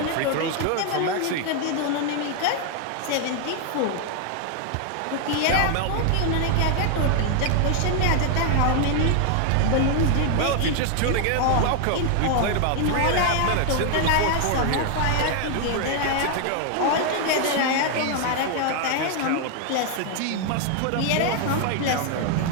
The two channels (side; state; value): both; different; correlation 0.00